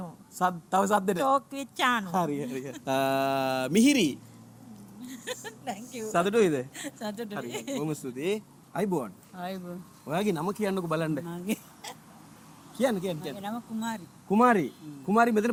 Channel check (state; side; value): identical; both; correlation 1.00